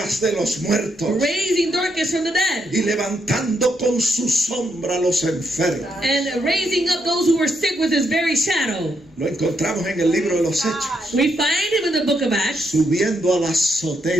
de los muertos raising Dorcas from the dead y levantando con su sombra a los enfermos. and raising up those who were sick with his very shadow. Lo encontramos en el libro de los Hechos, We find him in the book of Acts subiendo a la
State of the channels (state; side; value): normal; both; correlation 0.78